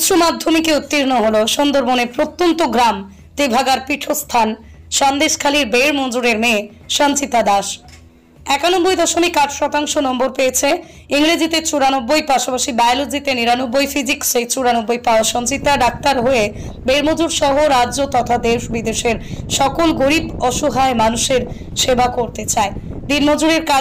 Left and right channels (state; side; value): identical; both; correlation 1.00